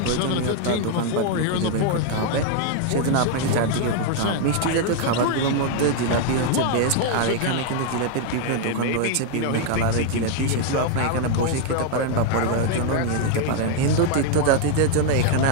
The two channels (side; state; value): both; different; correlation 0.00